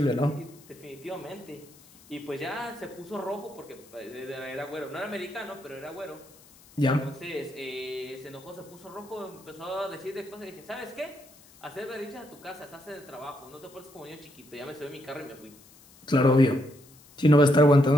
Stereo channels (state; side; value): noise; left; hiss, 24 dB below the sound